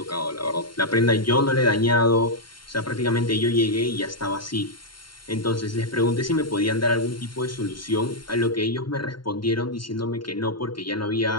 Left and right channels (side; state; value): right; late; 0.72 ms